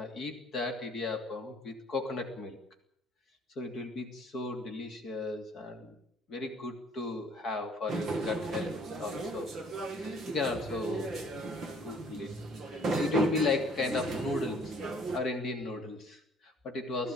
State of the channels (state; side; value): normal; both; correlation 0.58